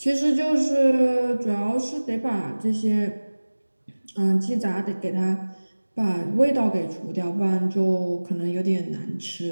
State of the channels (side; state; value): both; inverted; correlation -1.00